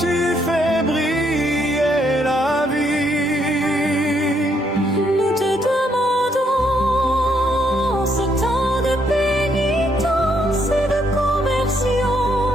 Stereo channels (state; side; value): normal; both; correlation 0.73